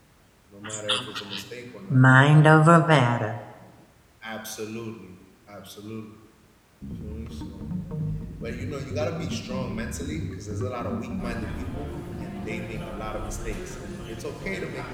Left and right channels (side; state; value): both; identical; correlation 1.00